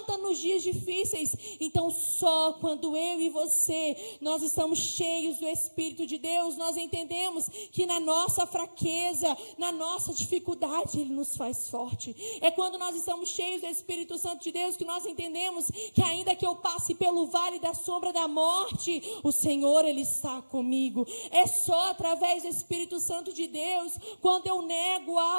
nos dias difíceis. Então só quando eu e você, nós estamos cheios do Espírito de Deus, nós entendemos que na nossa fraqueza, na nossa dificuldade, Ele nos faz forte. É quando nós estamos cheios do Espírito Santo de Deus que nós entendemos que ainda que eu passe pelo vale da sombra da morte, o Senhor, Ele está comigo. É só através do Espírito Santo de Deus, quando eu nego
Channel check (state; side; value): inverted; both; correlation -1.00